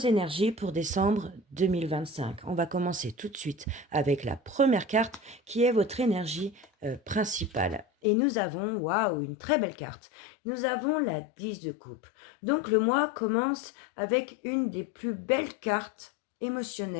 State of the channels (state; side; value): drops out; right; at 7.9 s